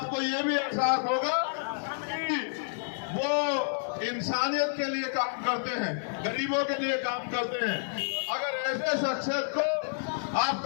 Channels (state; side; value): silent; right; digital silence